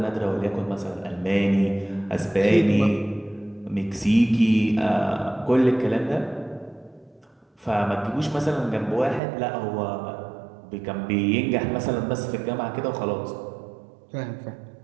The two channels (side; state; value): left; drops out; at 9.2 s